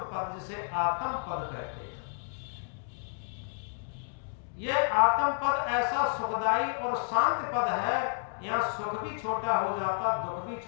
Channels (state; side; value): silent; right; digital silence